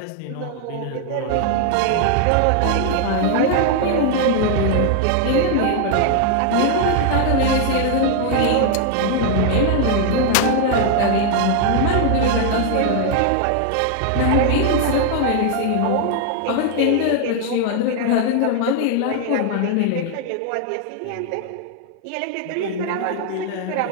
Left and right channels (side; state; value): both; different; correlation 0.00